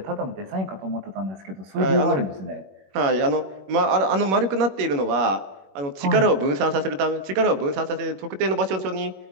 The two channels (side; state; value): left; late; 21 ms